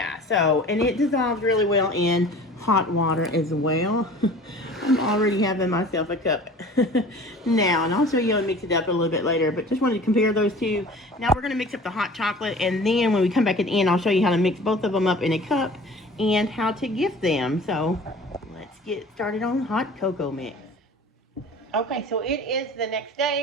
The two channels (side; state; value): both; normal; correlation 0.43